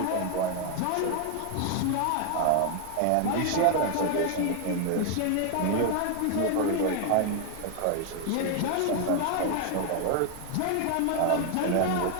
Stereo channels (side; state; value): both; different; correlation 0.00